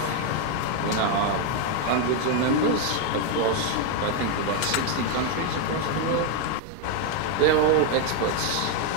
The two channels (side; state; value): both; different; correlation 0.01